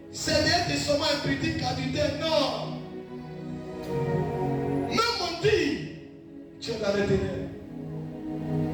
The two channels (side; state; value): both; identical; correlation 1.00